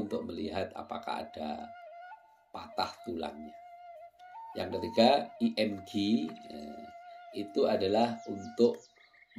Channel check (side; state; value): both; identical; correlation 1.00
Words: melihat apakah ada patah tulangnya. Yang ketiga, IMG, itu adalah untuk